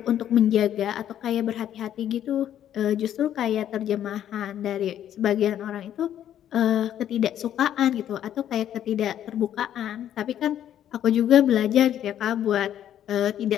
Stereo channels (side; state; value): right; quieter; 10.8 dB